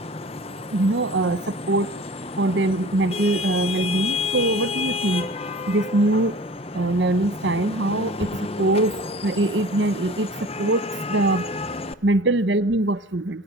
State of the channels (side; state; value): both; normal; correlation 0.42